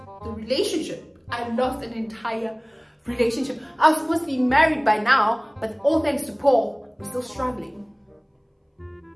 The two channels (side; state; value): both; identical; correlation 1.00